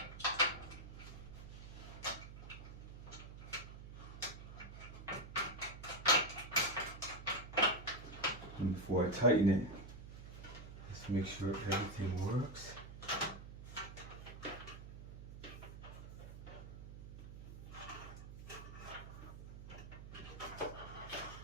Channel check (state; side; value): noise; right; hum, 11 dB below the sound